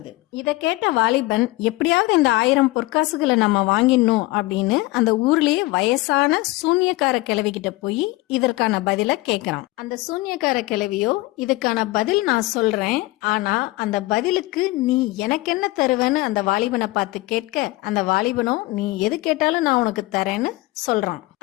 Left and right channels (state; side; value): quieter; right; 20.1 dB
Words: இத கேட்ட வாலிபன் எப்படியாவது இந்த 1000 பொற்காசுகளை நம்ம வாங்கிடணும் அப்படின்னு அந்த ஊர்லயே வயசான சூன்யக்கார கிழவி கிட்ட போய் இதற்கான பதில கேக்குறான். அந்த சூன்யக்கார கிழவியோ, இதுக்கான பதில் நான் சொல்றேன், ஆனா அந்த பதிலுக்கு நீ எனக்கு என்ன தருவேன்னு அந்த வாலிபனை பார்த்து கேட்க, அந்த வாலிபனோ நீ எது கேட்டாலும் நான் உனக்கு தரேன்னு சொல்றான்.